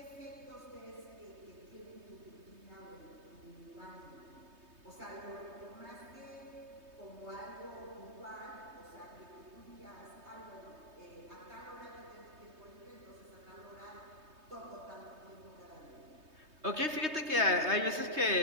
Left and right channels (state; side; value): late; left; 3.2 ms